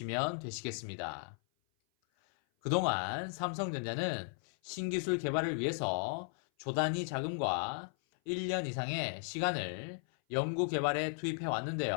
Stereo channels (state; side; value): silent; right; 54 dB below the other